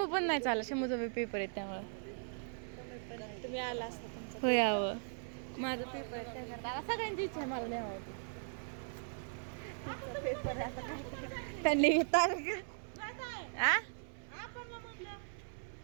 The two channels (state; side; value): silent; left; 52 dB below the other